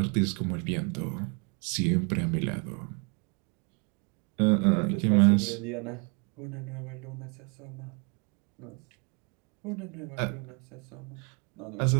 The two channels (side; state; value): left; quieter; 34.4 dB